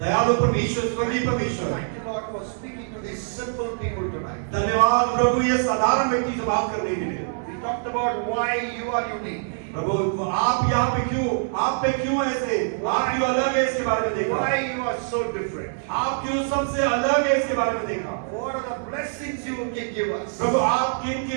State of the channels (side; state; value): left; silent; 62 dB below the other